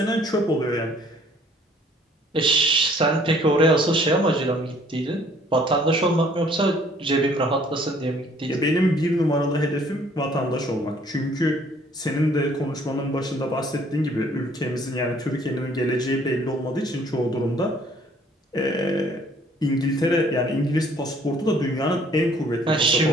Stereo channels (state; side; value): normal; both; correlation 0.59